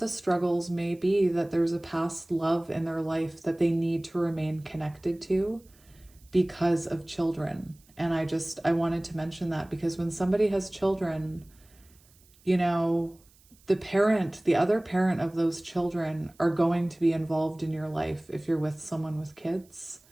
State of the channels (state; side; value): noise; right; hiss, 30 dB below the sound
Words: struggles may be that there's a past love in their life that they need to remain connected to because of children. And I wanted to mention that because when somebody has children, the other parent of those children are going to be involved in your life if you're with someone with kids.